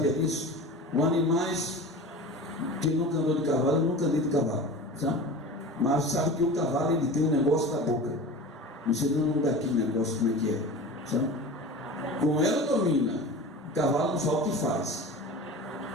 disso? Os animais, quem nunca andou de cavalo, eu nunca andei de cavalo, sabe? Mas sabe que o cavalo ele tem um negócio na boca. Você não dá aquele negócio como é que é, sabe? Com ela domina. O cavalo não sabe o que faz.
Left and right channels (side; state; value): both; normal; correlation 0.34